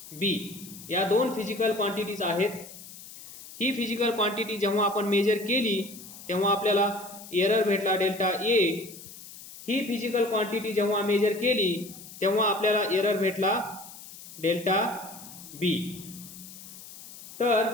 B या दोन फिजिकल क्वांटिटीज आहेत. ही फिजिकल क्वांटिटी जेव्हा आपण मेजर केली तेव्हा आपल्याला एरर भेटला डेल्टा ए. ही फिजिकल क्वांटिटी जेव्हा मेजर केली तेव्हा आपल्याला एरर भेटला डेल्टा बी.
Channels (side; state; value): left; noise; hiss, 16 dB below the sound